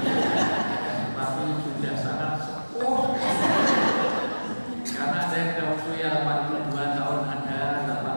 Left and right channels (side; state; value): both; inverted; correlation -1.00